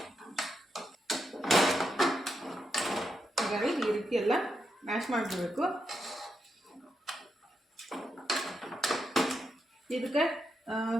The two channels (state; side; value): normal; both; correlation 0.83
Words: ಹಾಗಾಗಿ ಈ ರೀತಿ ಎಲ್ಲ ಮ್ಯಾಶ್ ಮಾಡಿಬಿಡ್ಬೇಕು. ಇದಕ್ಕೆ